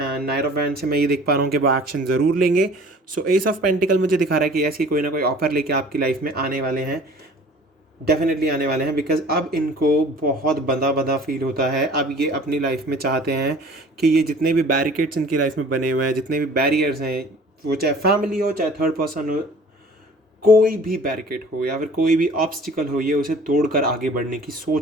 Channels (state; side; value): normal; both; correlation 0.48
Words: नाइट ऑफ वैंड्स से मैं ये देख पा रहा हूँ कि वो एक्शन ज़रूर लेंगे। सो एस ऑफ पेंटिकल मुझे दिखा रहा है कि ऐसी कोई ना कोई ऑफर लेके आपकी लाइफ में आने वाले हैं। डेफिनेटली आने वाले हैं, बिकॉज अब इनको बहुत बंधा बंधा फील होता है। अब ये अपनी लाइफ में चाहते हैं कि ये जितने भी बैरिकेड्स इनकी लाइफ में बने हुए हैं, जितने भी बैरियर्स हैं, वो चाहे फैमिली हो चाहे थर्ड पर्सन हो, कोई भी बैरिकेड हो या फिर कोई भी ऑब्स्टिकल हो, ये उसे तोड़कर आगे बढ़ने की